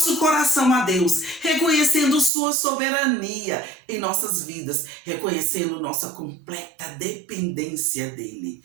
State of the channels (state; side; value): drops out; left; at 2.3 s